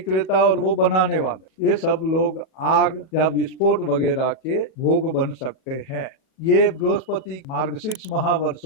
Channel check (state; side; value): late; right; 37 ms